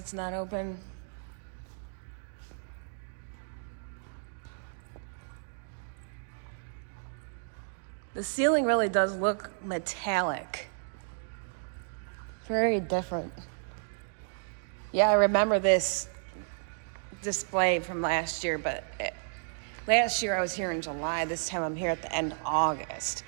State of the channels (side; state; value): left; silent; digital silence